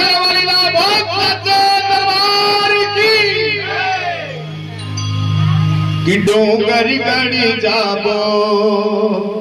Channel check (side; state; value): both; identical; correlation 1.00